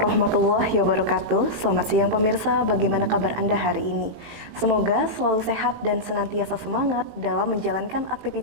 wabarakatuh. Selamat siang pemirsa, bagaimana kabar Anda hari ini? Semoga selalu sehat dan senantiasa semangat dalam menjalankan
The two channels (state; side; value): late; left; 18 ms